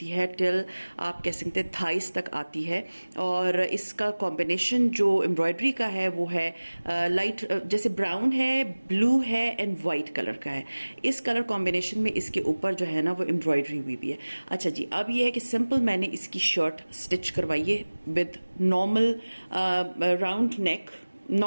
है टिल आप कह सकते हैं थाइस तक आती है। और इसका कॉम्बिनेशन जो एम्ब्रॉयडरी का है वो है लाइट जैसे ब्राउन है, ब्लू है एंड वाइट कलर का है। इस कलर कॉम्बिनेशन में इसके ऊपर जो है ना वो एम्ब्रॉयडरी हुई भी है। अच्छा जी, अब ये है कि सिंपल मैंने इसकी शर्ट स्टिच करवाई है with normal round neck,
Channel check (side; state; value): both; inverted; correlation -1.00